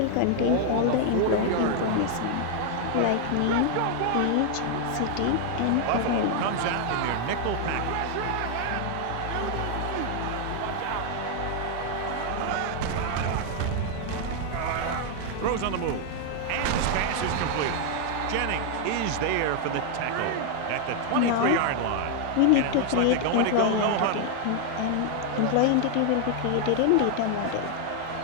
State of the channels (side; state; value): both; different; correlation 0.00